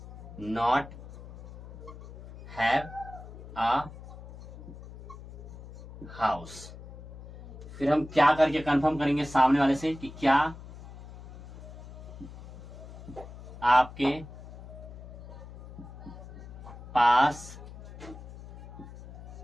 not have a house। फिर हम क्या करके कंफर्म करेंगे सामने वाले से कि क्या आपके पास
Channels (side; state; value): left; noise; hum, 14 dB below the sound